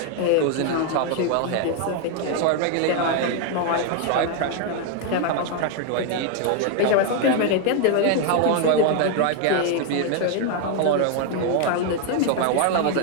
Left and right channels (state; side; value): different; both; correlation 0.01